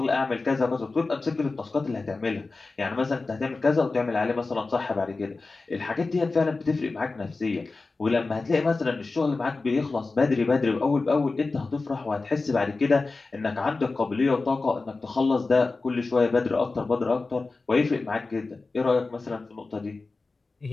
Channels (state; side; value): quieter; right; 3.7 dB